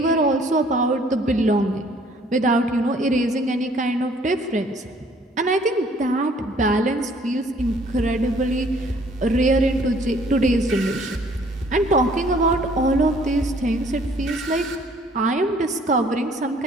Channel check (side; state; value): both; normal; correlation 0.59